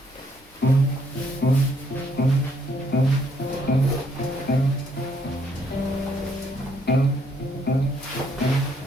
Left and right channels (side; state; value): both; normal; correlation 0.70